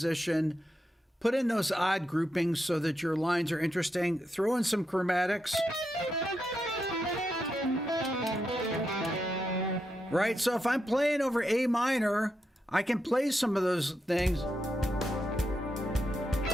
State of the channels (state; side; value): normal; both; correlation 0.84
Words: put in those odd groupings so that your lines are interesting, throw in some chromatics. Right? So if I'm playing over A minor, I can play some of those things.